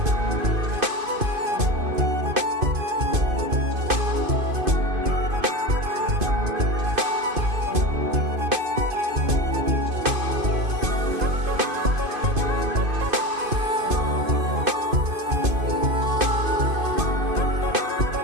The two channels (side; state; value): left; late; 2.5 ms